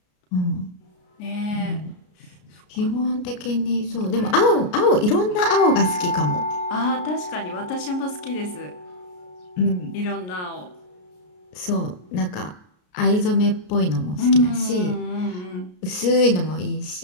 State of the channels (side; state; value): right; late; 33 ms